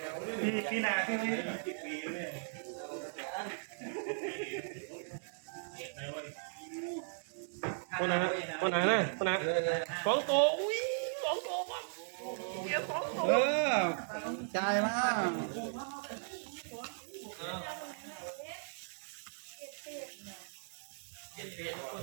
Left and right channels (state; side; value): silent; left; digital silence